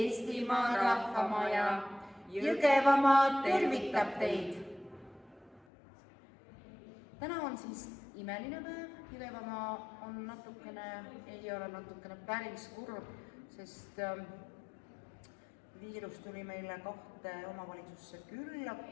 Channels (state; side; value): drops out; right; at 5.7 s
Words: Rahvamaja! Jõgevamaa tervitab teid! Täna on siis imeline päev. Jõgevamaa on ei ole natukene päris kurb, sest viirus tuli meile 2 omavalitsusse külla,